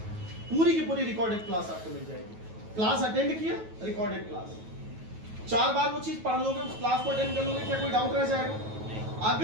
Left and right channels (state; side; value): late; left; 9.3 ms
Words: पूरी की पूरी रिकॉर्डेड क्लास आपको मिल जाएगी। क्लास अटेंड किया, रिकॉर्डेड क्लास, 4 बार वो चीज पढ़ लोगे, उस क्लास को अटेंड कर लोगे, क्या कोई डाउट रह जाएगा?